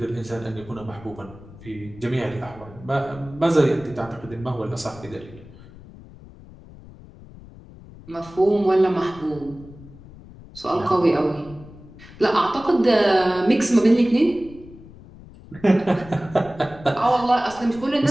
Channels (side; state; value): left; noise; rumble, 19 dB below the sound